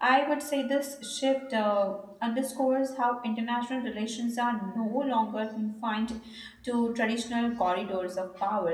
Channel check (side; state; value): both; identical; correlation 1.00